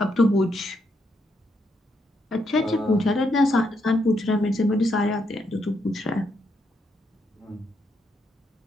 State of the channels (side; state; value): both; normal; correlation 0.78